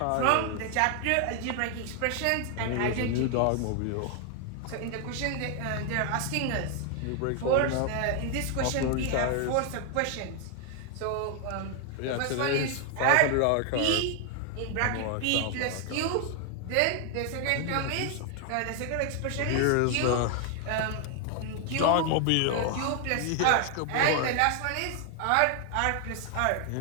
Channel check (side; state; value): both; different; correlation 0.00